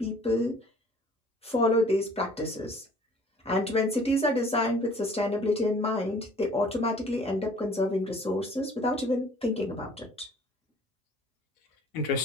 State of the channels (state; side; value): normal; both; correlation 0.53